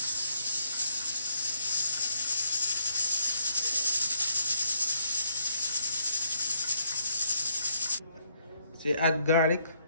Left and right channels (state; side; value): inverted; both; correlation -0.73